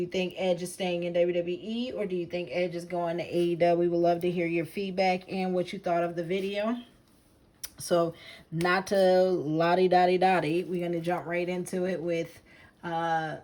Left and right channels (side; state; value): both; identical; correlation 1.00